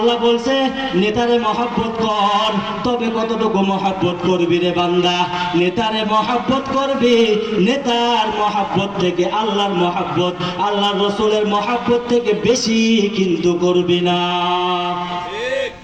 বলছে, নেতারে মহাব্বত কর। তবে কতটুকু মহাব্বত করবি রে বান্দা? নেতারে মহাব্বত করবি, নেতার মহাব্বত থেকে আল্লাহর মহাব্বত, আল্লাহর রসুলের মহাব্বত থেকে বেশি কিন্তু করবি না।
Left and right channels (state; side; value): noise; left; rumble, 29 dB below the sound